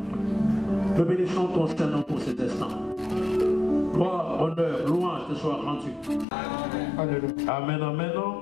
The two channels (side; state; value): right; drops out; at 6.2 s